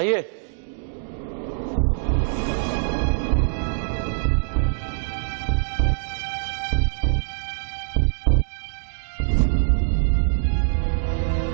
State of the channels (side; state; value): left; silent; digital silence